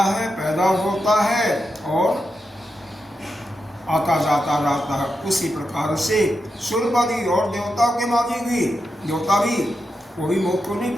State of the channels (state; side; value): normal; both; correlation 0.87